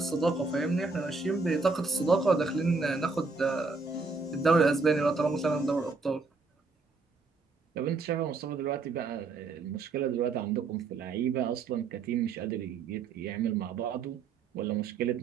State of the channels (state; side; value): quieter; left; 4.2 dB